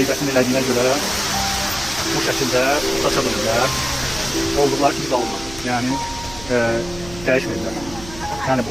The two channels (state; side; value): noise; right; hum, 15 dB below the sound